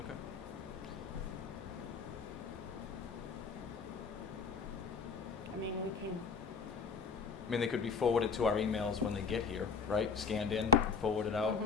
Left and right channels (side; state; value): right; quieter; 5.4 dB